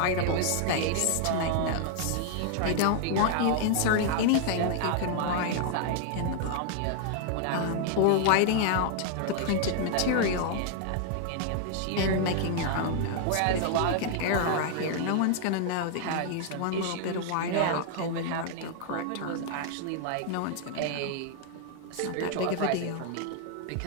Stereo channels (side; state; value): both; different; correlation 0.00